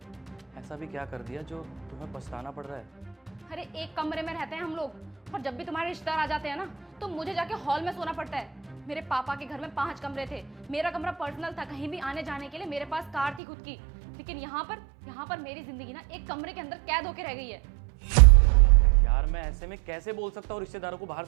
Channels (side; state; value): left; drops out; at 13.4 s